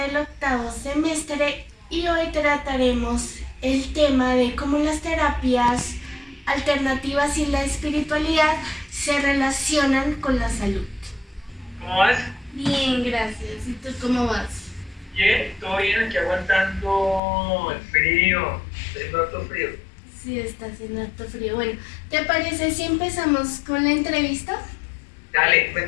octavo semestre y hoy trataremos el tema de cómo las terapias alternativas y la espiritualidad se relacionan con la salud. ¿Cómo vas? Bien, gracias. ¿Y tú cómo vas? Bien, todo bien, aquí aguantando el frío. Está haciendo harto frío. Sí, está haciendo harto frío. Bueno, ¿te parece si empezamos con la entrevista? Dale,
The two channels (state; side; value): drops out; right; at 17.2 s